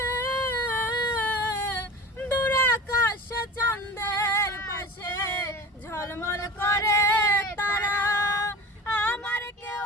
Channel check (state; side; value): normal; both; correlation 0.35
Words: দূর আকাশে চাঁদের পাশে ঝলমল করে তারা, আমার কেউ